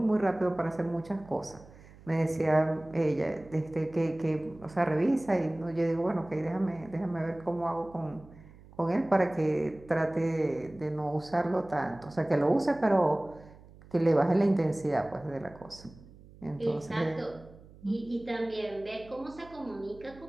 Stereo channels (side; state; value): right; noise; hum, 22 dB below the sound